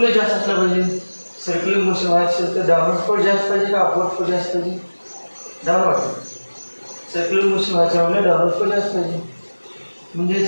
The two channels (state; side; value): inverted; both; correlation -1.00